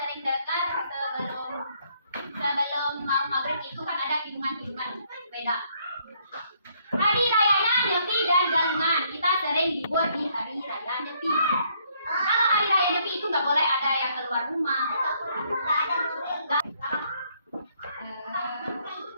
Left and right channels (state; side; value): inverted; both; correlation -0.68